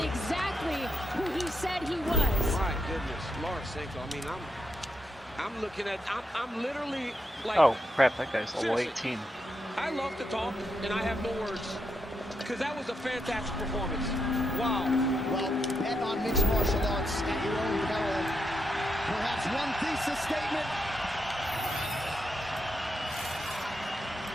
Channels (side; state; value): both; normal; correlation 0.81